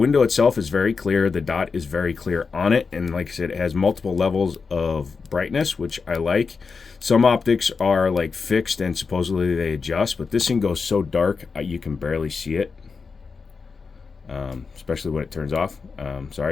itself, is very clear. The dot is very clear on it. And like I said, it has multiple levels of brightness, which I like. Some optics are like fixed and supposedly they adjust, but this thing goes so dark you can barely see it, especially when it turns off.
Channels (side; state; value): right; quieter; 5.0 dB